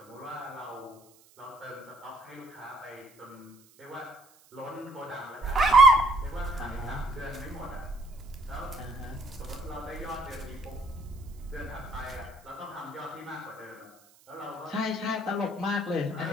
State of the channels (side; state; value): right; noise; hiss, 28 dB below the sound